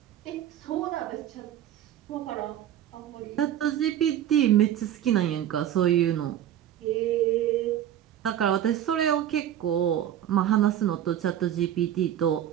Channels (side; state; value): left; quieter; 11.0 dB